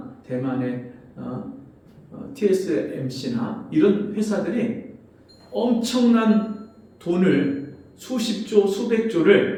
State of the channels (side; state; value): both; identical; correlation 1.00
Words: 대만의 TSMC나 이런 회사들이 엄청난 돈을 수십조,